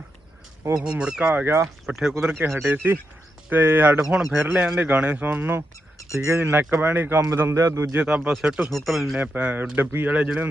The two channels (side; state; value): both; normal; correlation 0.85